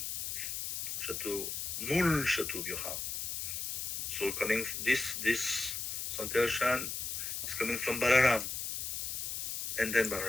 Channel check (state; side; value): noise; left; hiss, 3 dB below the sound